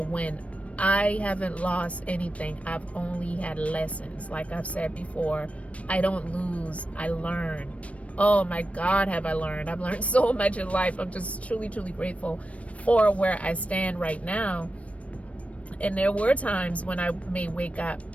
win. I haven't lost anything. I've only had lessons. Like I've said before, I don't lose, I learn. Oh my God, have I learned. I've learned so much in life. I'm just truly, truly grateful for where I stand right now. And there were times when I may wake up,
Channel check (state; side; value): late; right; 0.064 ms